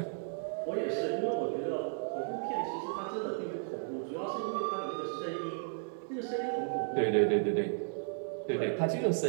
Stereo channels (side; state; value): left; silent; digital silence